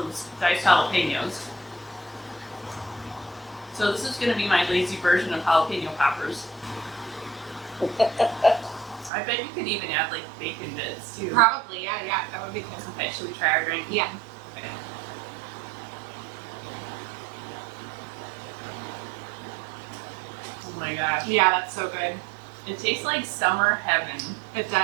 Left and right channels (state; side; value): drops out; left; at 9.1 s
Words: diced jalapenos. So this is going to be my lazy version of jalapeno poppers. I bet you could even add like bacon bits too. Probably, yeah, that would be good. Okay, should we try our drink? Yeah. Okay. Oh my gosh. Yeah, that's so good. It tastes like summer heaven. It